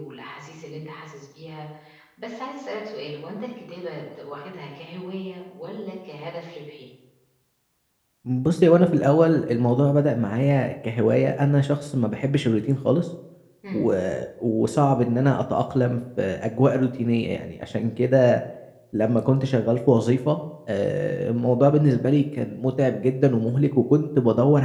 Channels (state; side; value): identical; both; correlation 1.00